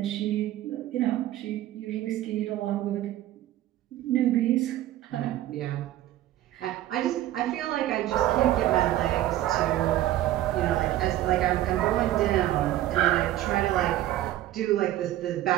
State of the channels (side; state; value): left; quieter; 13.9 dB